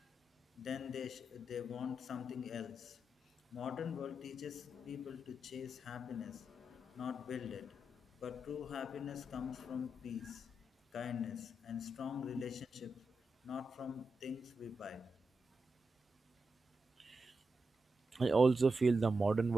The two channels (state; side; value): normal; both; correlation 0.87